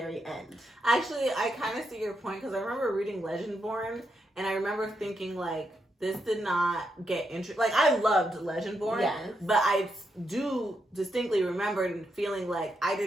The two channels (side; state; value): both; normal; correlation 0.82